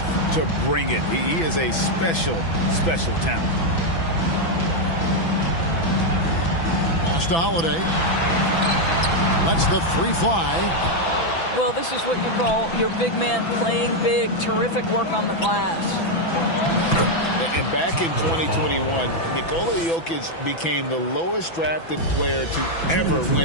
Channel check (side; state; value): right; late; 6.0 ms